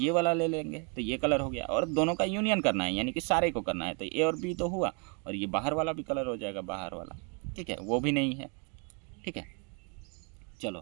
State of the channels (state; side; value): quieter; left; 36.8 dB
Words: वाला ले लेंगे, तो ये कलर हो गया। और दोनों का यूनियन करना है यानी कि सारे को करना है, तो ए और बी तो हुआ और ये बाहर वाला भी कलर हो जाएगा, बाहर वाला, ठीक है, वो भी नहीं है, ठीक है।